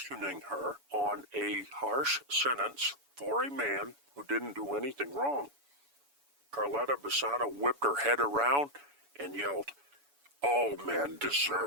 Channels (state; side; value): late; left; 7.0 ms